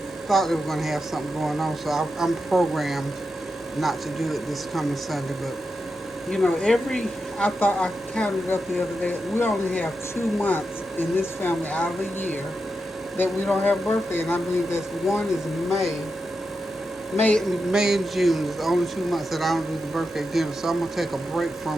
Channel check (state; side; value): normal; both; correlation 0.88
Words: thought they were going to have something going on, so I'm programmed not to do it this coming Sunday, but I thought I counted up the other day. We only have 2 months in this family out of a year that we don't have birthday, and I believe that's one is May. May and June is the only 2 months that I don't do the birthday dinner. So I'm gonna take a break